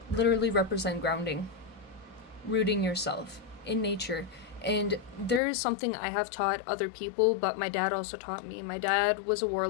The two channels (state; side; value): drops out; right; at 5.4 s